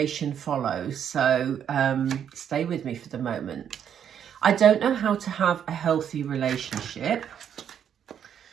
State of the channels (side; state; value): left; quieter; 8.8 dB